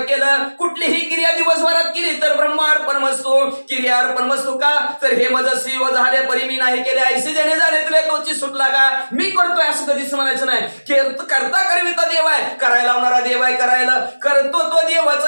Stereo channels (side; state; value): both; inverted; correlation -1.00